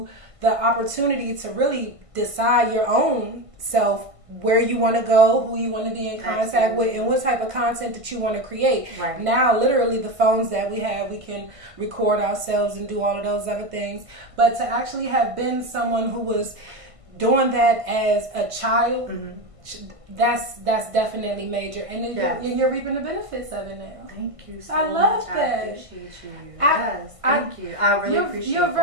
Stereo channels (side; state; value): left; late; 1.5 ms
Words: the opportunity to really decide your own self, where you want to go, who you want to be in contact with, and what type of content that you want to create. Right. Now, literally, the phones that we have, we can record ourselves and do all of those other things. But to actually have been someone who was doing that as a child, that's definitely major. And then you're reaping the benefits of it now. Thank you so I love much. that. I appreciate you. Thank you. I really appreciate it. You're